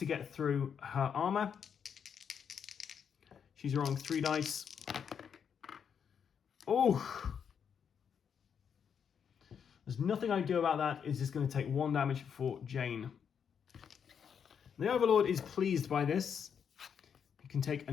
get through her armor. She's rolling 3 dice. Oh! There's nothing I can do about that. It's just going to take 1 damage for Jane. The Overlord is pleased by this. He can take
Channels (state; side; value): quieter; right; 7.4 dB